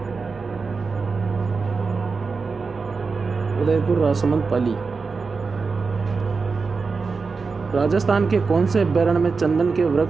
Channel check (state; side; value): quieter; left; 4.6 dB